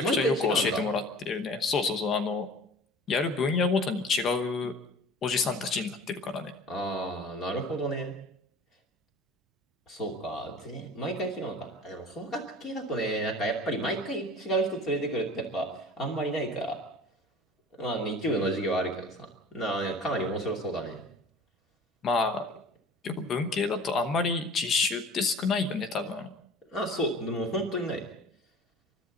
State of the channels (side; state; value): both; normal; correlation 0.43